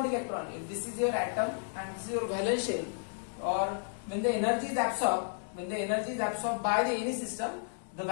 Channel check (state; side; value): silent; right; digital silence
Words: electron. If this is your atom and this is your valence shell, or when the energy is absorbed, by the any system, the